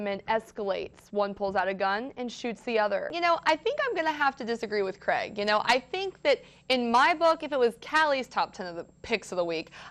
men escalates. One pulls out a gun and shoots the other. I think I'm going to have to disagree with Craig. I think that in my book, if it was Callie's top 10 of the picks of the week,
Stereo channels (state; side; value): identical; both; correlation 1.00